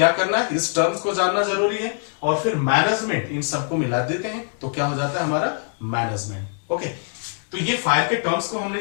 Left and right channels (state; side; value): silent; right; 63 dB below the other